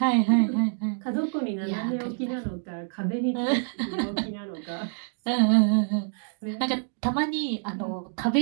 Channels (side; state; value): left; silent; digital silence